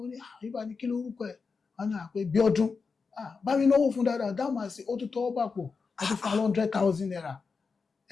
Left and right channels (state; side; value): quieter; right; 4.9 dB